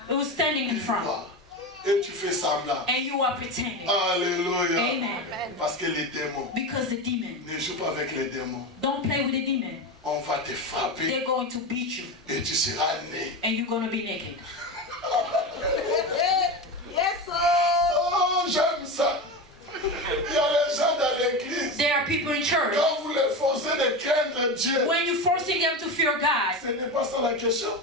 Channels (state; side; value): normal; both; correlation 0.21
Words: who's standing in front. And you are pretending. Alléluia. Amen. Parce que les démons. Because the demon. Ne joue pas avec les démons. Don't play with the demon. On va te frapper. They're going to beat you. Et tu seras né. And you're going to be naked. Yes, oh, j'aime ça. Il y a les gens dans l'église. There are people in church. Quand vous les forcez de craindre Dieu. When you're forcing them to fear God. Ce n'est pas ça la question.